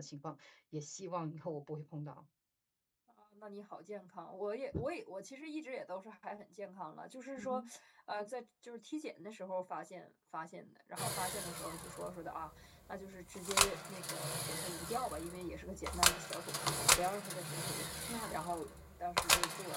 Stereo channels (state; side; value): identical; both; correlation 1.00